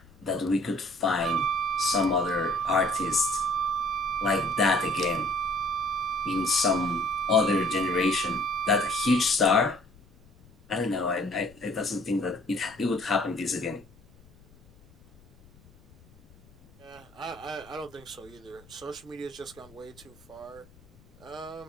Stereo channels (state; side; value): noise; left; rumble, 26 dB below the sound